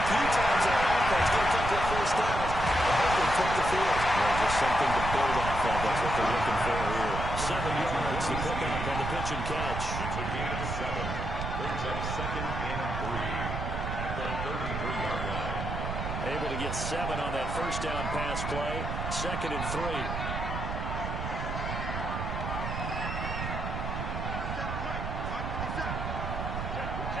times on offense, get a couple of first downs, and hopefully flip the field. Well, just something to build off of. That's what they're looking for here. 7 yards to pick up on the pitch and catch. It's a gain of 7. Brings up 2nd and 3 at the 33-yard line. Able to get 7 on that first down pass play. 2nd and 3.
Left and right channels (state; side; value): noise; right; rumble, 4 dB below the sound